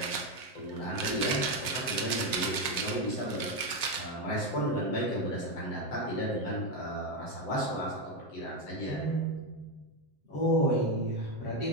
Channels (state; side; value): late; right; 7.7 ms